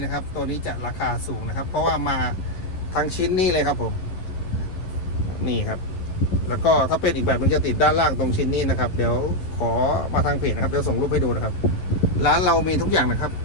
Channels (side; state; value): right; late; 11 ms